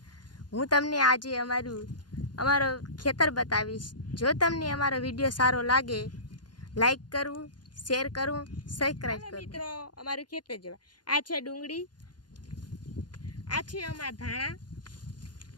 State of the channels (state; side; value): late; right; 0.70 ms